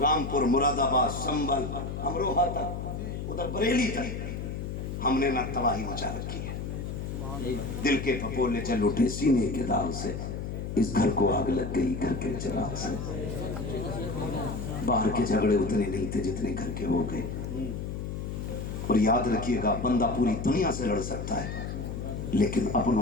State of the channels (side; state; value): left; noise; hum, 5 dB below the sound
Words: مراد آباد، سنبل، امروہہ تک، ادھر بریلی تک، ہم نے نہ تباہی مچا رکھی ہے۔ دل کے پھپولے جل اٹھے سینے کے داغ سے، اس گھر کو آگ لگ گئی گھر کے چراغ سے۔ باہر کے جھگڑے اتنے نہیں تھے جتنے گھر کے ہو گئے۔ اور یاد رکھیے گا بندہ پوری دنیا سے لڑ سکتا ہے لیکن